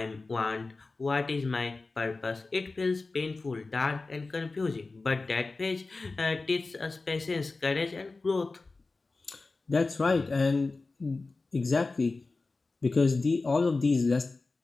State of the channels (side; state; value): right; quieter; 3.6 dB